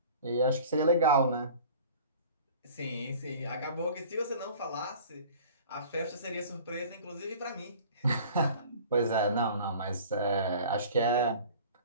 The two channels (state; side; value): inverted; both; correlation -0.44